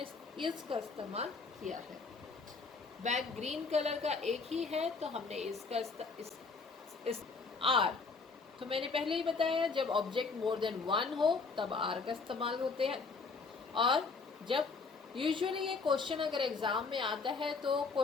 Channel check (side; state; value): right; quieter; 4.4 dB